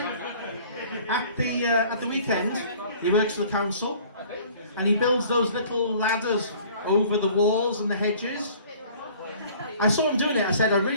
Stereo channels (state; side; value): inverted; both; correlation -0.51